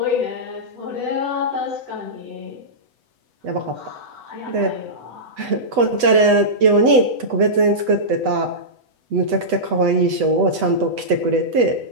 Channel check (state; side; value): late; left; 8.1 ms